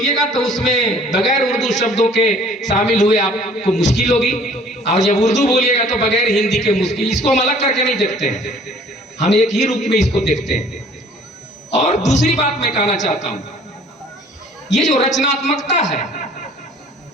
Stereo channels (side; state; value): both; normal; correlation 0.53